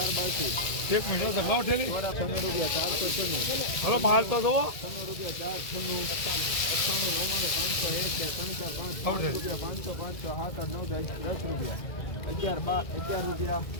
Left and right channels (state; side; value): late; right; 2.1 ms